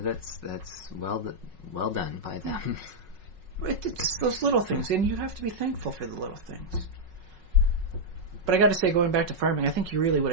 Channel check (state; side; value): late; left; 5.4 ms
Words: well done by them. It's those little things, and you have to be thankful for the little things. But I got to say, going back to farming, I think you really would